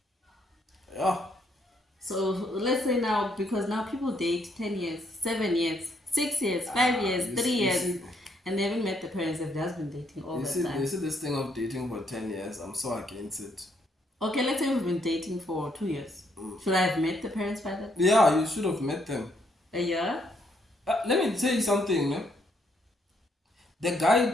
Yeah. So let's say now, because now people date 10 years, 7 years, 6 years, 5 years, 3 years, and they haven't met the parents. They've just been dating all the time. You see this thing of dating for 10 years, I'm so against it. Okay, let's say we've been dating for 2 years. Should I have met the parents by that? Yeah, you should have met them. A year? Let me tell you something, man. The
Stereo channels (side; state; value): both; normal; correlation 0.72